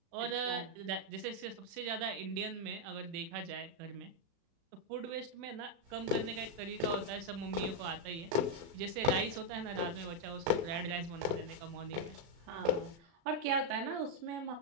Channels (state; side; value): late; left; 36 ms